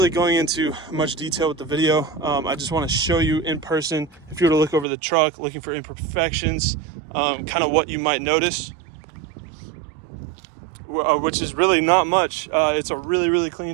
going into much detail with the video. I just want to show you in person, if you were to look over the truck, looking for imperfections, kind of what you might notice. Which is really not much. It's a really clean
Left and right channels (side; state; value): left; drops out; at 4.9 s